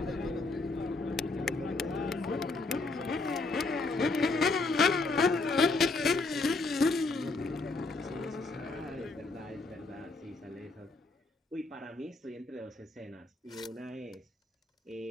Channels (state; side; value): quieter; right; 3.5 dB